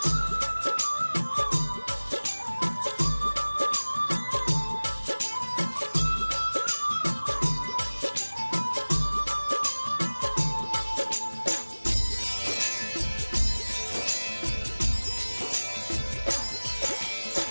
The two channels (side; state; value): both; inverted; correlation -1.00